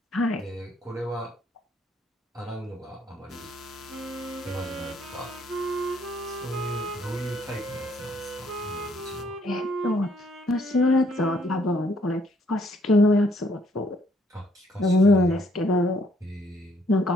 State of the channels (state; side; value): normal; both; correlation 0.67